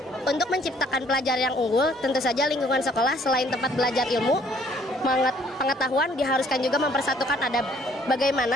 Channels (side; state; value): both; normal; correlation 0.61